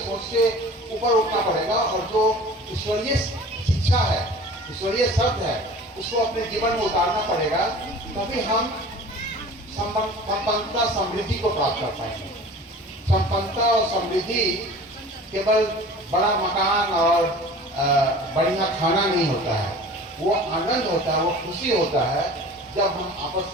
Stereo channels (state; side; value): normal; both; correlation 0.42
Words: से ऊपर उठना पड़ेगा और जो ईश्वरीय शिक्षा है, ईश्वरीय शब्द है, उसको अपने जीवन में उतारना पड़ेगा। तभी हम संपन्नता समृद्धि को प्राप्त कर पाएंगे। संपन्नता और समृद्धि केवल बड़ा मकान और बढ़िया खाना नहीं होता है। वो आनंद होता है, वो खुशी होता है जब हम आपस